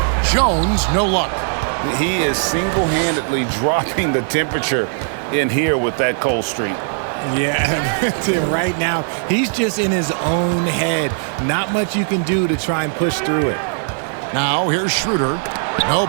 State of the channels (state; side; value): silent; left; 67 dB below the other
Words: Jones, no luck. He is single-handedly dropping the temperature in here with that cold streak. Yeah, right now, he's just in his own head. Not much you can do to try and push through it. Now here's Schroeder. No